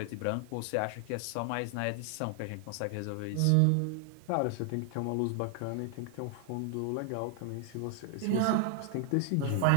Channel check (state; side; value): different; both; correlation 0.00